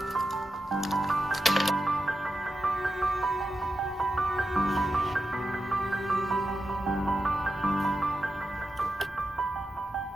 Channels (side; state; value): both; normal; correlation 0.89